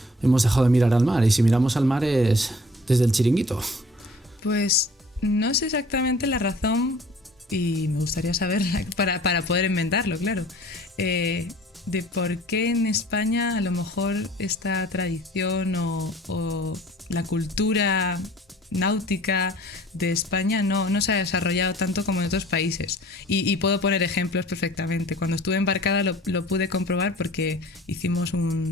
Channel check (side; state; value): both; normal; correlation 0.50